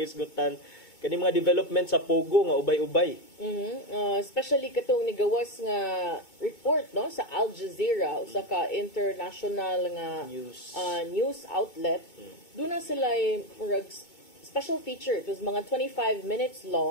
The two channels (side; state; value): right; late; 2.2 ms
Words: Kani mga development sa Pogo nga ubay-ubay. Especially katong nigawas nga report no sa Al Jazeera usa ka international nga news outlet. Doon na sila murag special feature. It was mga 25 minutes